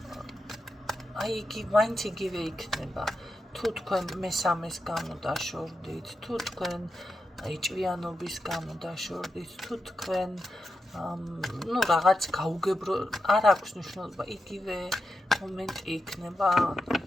აი მაინც იგივე იქნება. თუ თქვენ მესამეს გამო დაშორდით, თუ თქვენ ჭვიანობის გამო დაშორდით, თუ თქვენ რაღაც გაუგებრო, არ აქვს მნიშვნელობა, იგივე მომენტი იქნება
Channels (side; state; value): both; normal; correlation 0.88